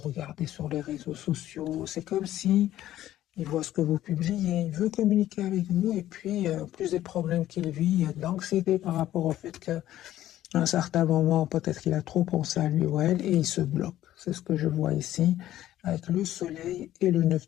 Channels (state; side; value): quieter; right; 13.3 dB